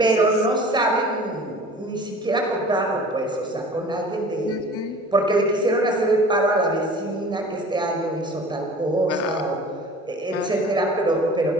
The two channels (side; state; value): both; normal; correlation 0.44